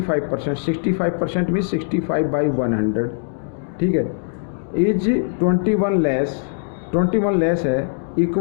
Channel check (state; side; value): silent; right; digital silence